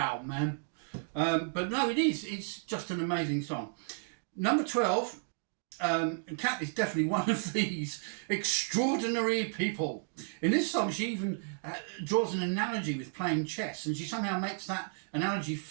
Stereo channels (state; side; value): silent; left; digital silence